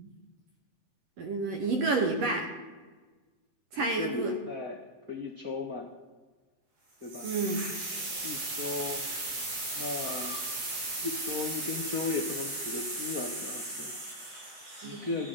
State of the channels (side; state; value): left; late; 7.8 ms